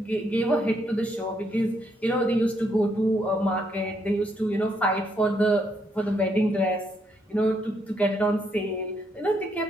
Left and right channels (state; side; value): normal; both; correlation 0.75